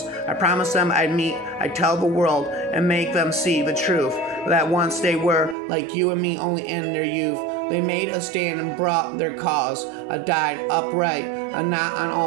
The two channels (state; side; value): drops out; left; at 5.6 s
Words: I promised them I'd tell the world and make them see the truth. That once they were like you and me, only in their youth. They made a stand and brought their cause. Died upright, not on